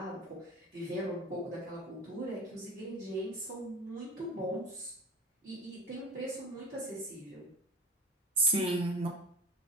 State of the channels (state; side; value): normal; both; correlation 0.32